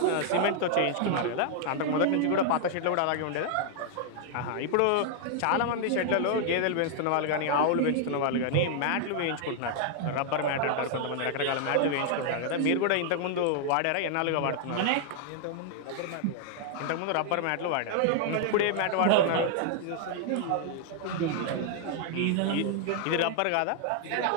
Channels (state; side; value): different; both; correlation 0.00